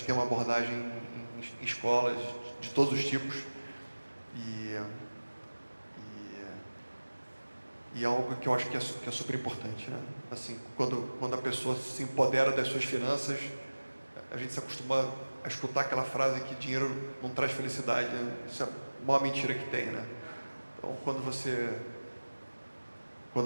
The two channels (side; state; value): both; inverted; correlation -1.00